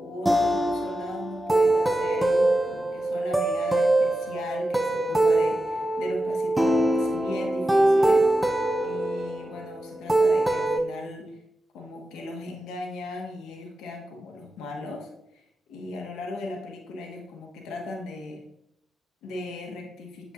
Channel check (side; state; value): both; normal; correlation 0.91